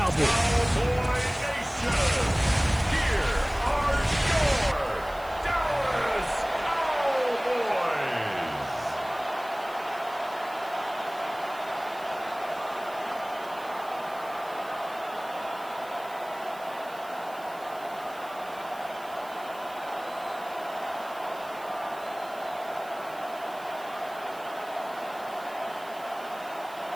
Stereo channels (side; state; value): right; noise; hiss, 21 dB below the sound